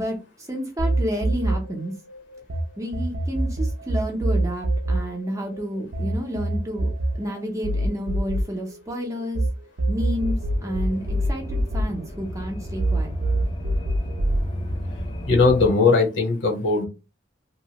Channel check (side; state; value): both; normal; correlation 0.72